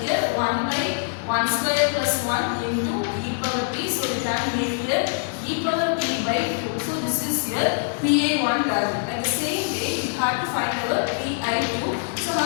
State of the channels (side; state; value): right; silent; 63 dB below the other